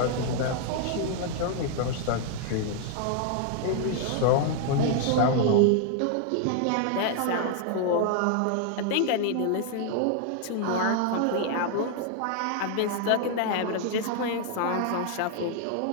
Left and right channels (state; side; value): different; both; correlation 0.00